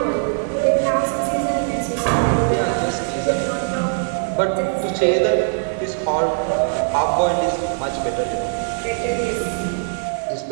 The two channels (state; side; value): silent; left; digital silence